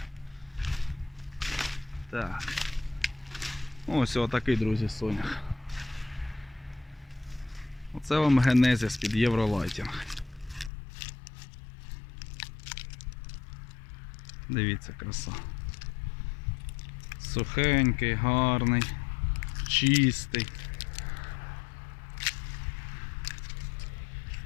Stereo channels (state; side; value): drops out; right; at 10.7 s